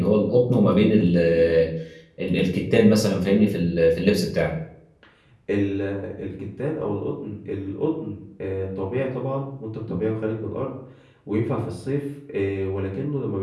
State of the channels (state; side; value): identical; both; correlation 1.00